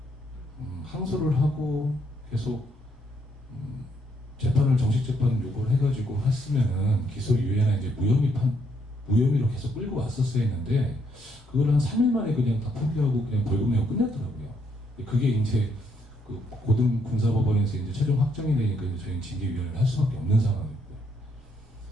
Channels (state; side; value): normal; both; correlation 0.73